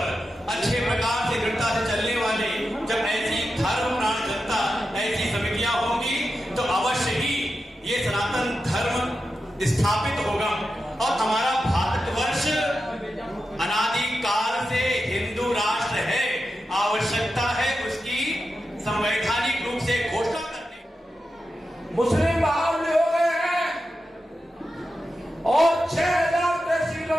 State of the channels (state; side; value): normal; both; correlation 0.90